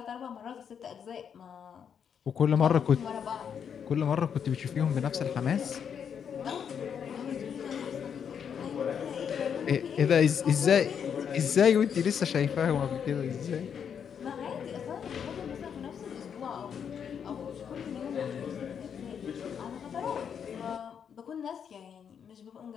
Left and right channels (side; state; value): right; quieter; 7.7 dB